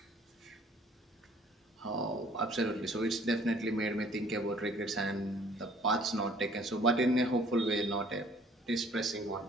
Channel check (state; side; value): normal; both; correlation 0.56